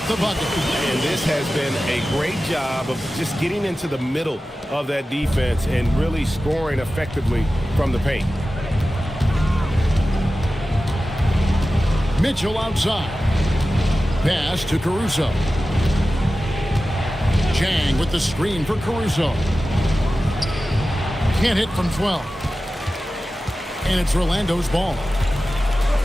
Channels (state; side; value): normal; both; correlation 0.94